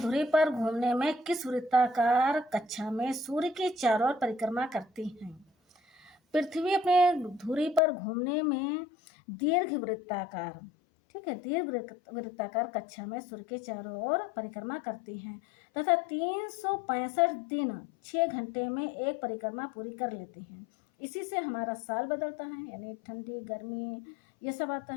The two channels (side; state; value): right; drops out; at 7.8 s